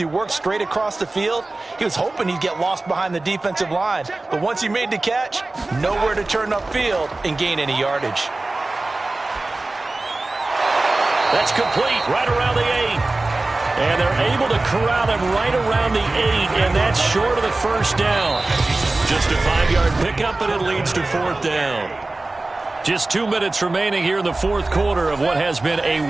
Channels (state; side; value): quieter; left; 3.1 dB